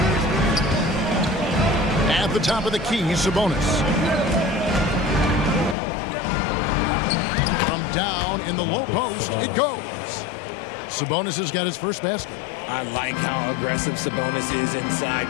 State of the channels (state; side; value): drops out; right; at 5.8 s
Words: At the top of the key, Sabonis. From down in the low post, it goes. Sabonis has got his first basket. I like how aggressive Sabonis is inside.